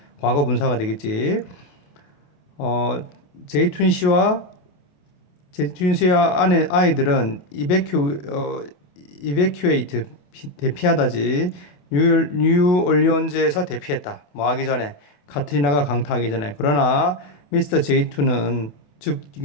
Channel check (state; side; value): late; right; 28 ms